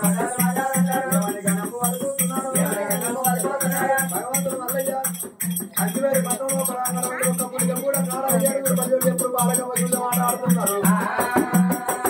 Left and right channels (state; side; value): identical; both; correlation 1.00